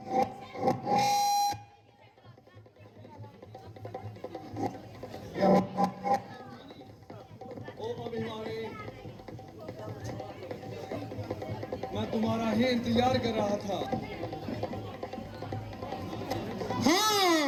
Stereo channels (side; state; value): both; identical; correlation 1.00